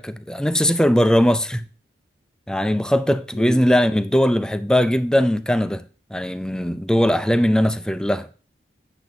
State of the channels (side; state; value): both; normal; correlation 0.93